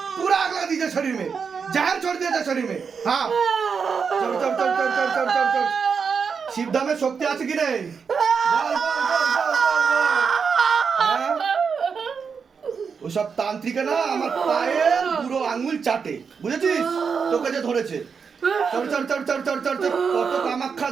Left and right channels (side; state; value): left; quieter; 5.9 dB